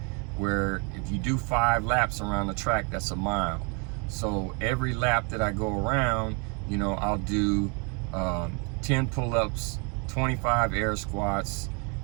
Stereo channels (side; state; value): left; quieter; 34.4 dB